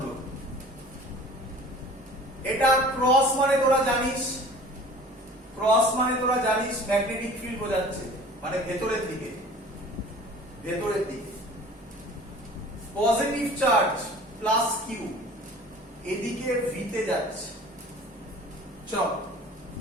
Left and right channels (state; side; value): normal; both; correlation 0.45